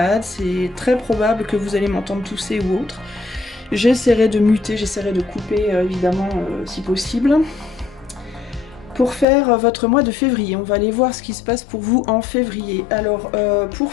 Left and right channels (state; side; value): drops out; right; at 9.2 s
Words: c'est très probable que vous allez m'entendre tousser ou autre. J'essaierai de muter, j'essaierai de couper évidemment si possible. Pour faire votre mois de février, on va aller voir ce qui se passe pour vous en février. Alors pour